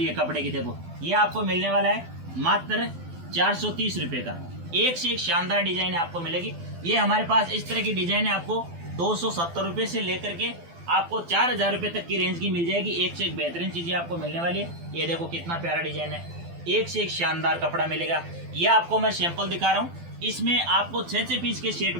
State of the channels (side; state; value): left; late; 12 ms